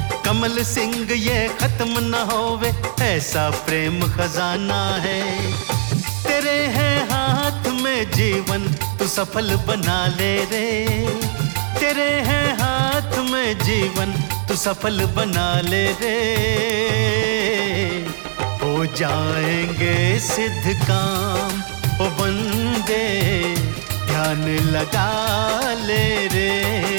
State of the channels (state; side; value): silent; left; digital silence